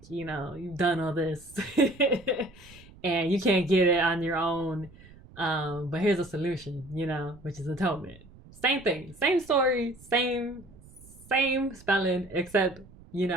you've done all this and you can't get it on your own, but here's a solution, which is atonement. Same thing, same story, same spelling, except with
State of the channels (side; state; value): right; noise; rumble, 22 dB below the sound